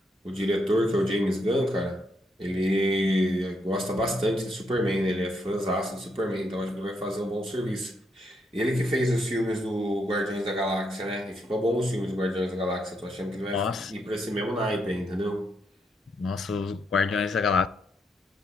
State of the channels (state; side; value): normal; both; correlation 0.78